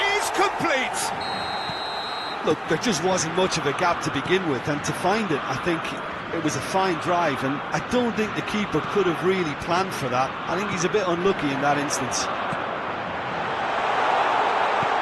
Look, there just wasn't much of a gap to begin with, and to find it, I think it was a fine drive, and I don't think the keeper could have really planned for that. I think he's a bit unlucky in that instance.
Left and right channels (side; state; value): both; identical; correlation 1.00